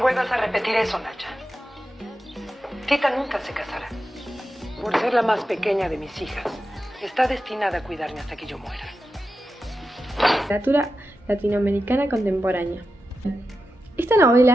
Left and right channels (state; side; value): normal; both; correlation 0.91